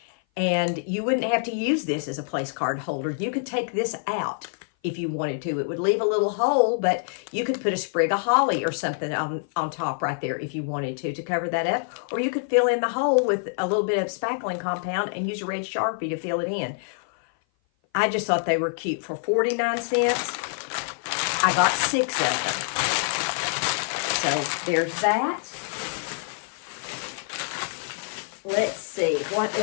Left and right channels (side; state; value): right; silent; 56 dB below the other